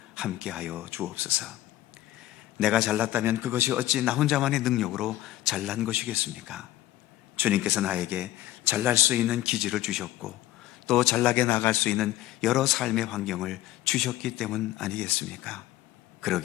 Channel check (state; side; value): quieter; right; 15.3 dB